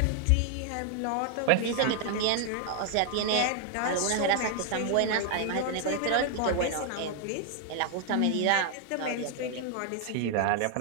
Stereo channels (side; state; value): both; different; correlation 0.00